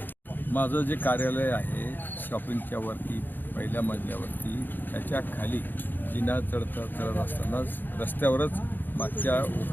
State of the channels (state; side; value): late; right; 0.091 ms